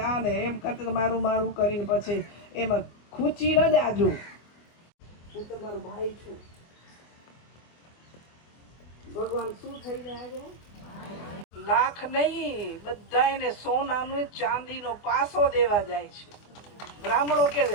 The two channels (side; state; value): right; late; 24 ms